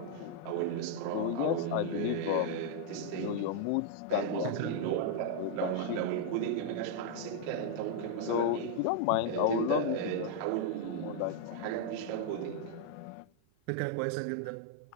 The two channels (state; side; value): different; both; correlation 0.00